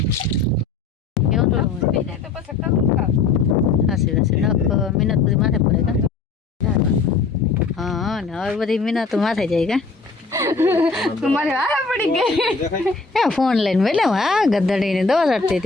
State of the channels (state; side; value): quieter; right; 4.3 dB